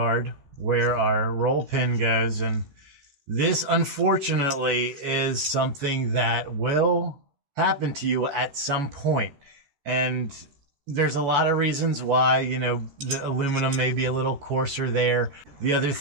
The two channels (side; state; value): left; late; 14 ms